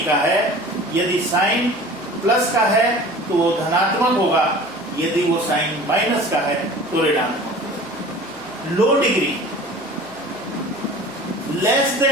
का है। यदि साइन प्लस का है तो वो धनात्मक होगा, यदि वो साइन माइनस का है तो ऋणात्मक। लो degree less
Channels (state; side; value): noise; left; hum, 29 dB below the sound